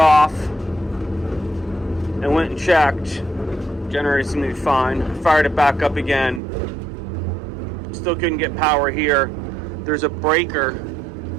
and went and checked. Generator seemed to be fine. Fired it back up again. Still couldn't get power here. There's a breaker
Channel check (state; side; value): drops out; left; at 6.4 s